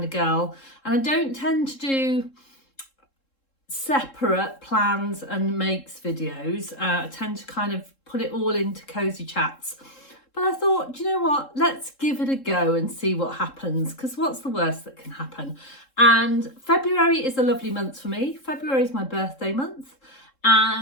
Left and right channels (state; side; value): late; right; 3.7 ms